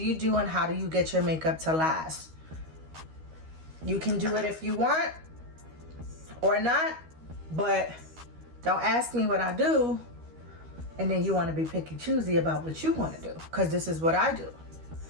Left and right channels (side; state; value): left; late; 13 ms